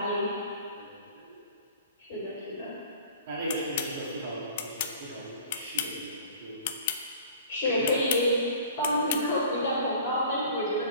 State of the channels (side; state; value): both; inverted; correlation -0.45